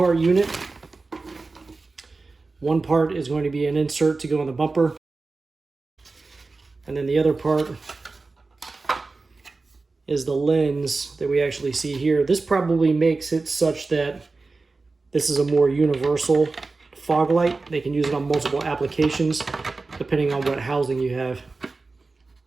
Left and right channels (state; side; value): quieter; left; 3.8 dB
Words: unit. One part is going to be an insert to go in the bumper. And then the other part is the lens that we actually see here. This probably makes it such that this is a more universal fog light. They can use it on multiple applications depending on what housing you have.